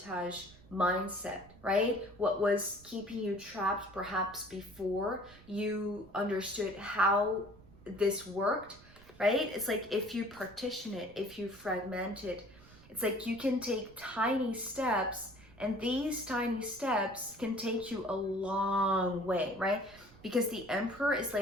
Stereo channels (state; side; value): noise; right; rumble, 22 dB below the sound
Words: mindset, right? What was keeping you trapped perhaps before you understood how this worked, right? It's like if you partition it, if you fragment it, it's like you can take tiny steps, and these tiny steps can take you a long way, right? Because the Emperor is